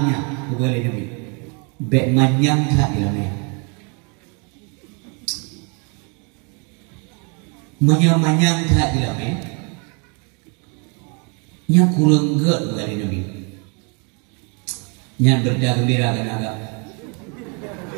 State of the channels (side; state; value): left; quieter; 34.8 dB